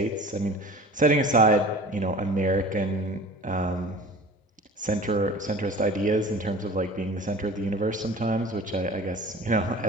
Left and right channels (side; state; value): both; normal; correlation 0.41